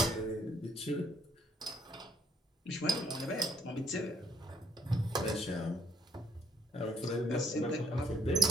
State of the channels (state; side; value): normal; both; correlation 0.67